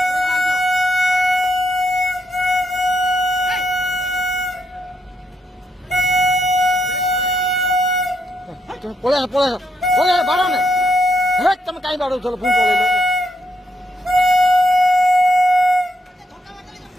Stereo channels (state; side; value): normal; both; correlation 0.77